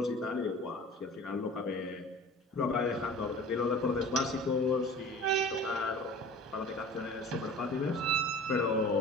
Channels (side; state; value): both; normal; correlation 0.42